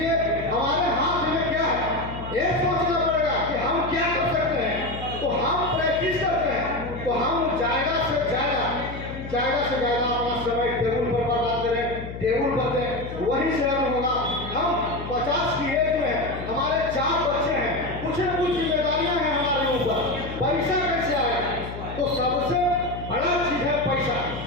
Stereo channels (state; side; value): noise; left; hum, 10 dB below the sound